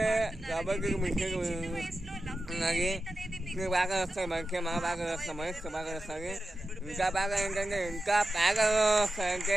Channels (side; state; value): both; normal; correlation 0.92